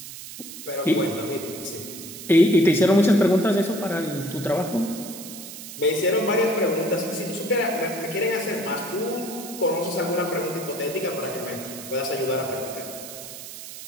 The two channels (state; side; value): noise; right; hiss, 12 dB below the sound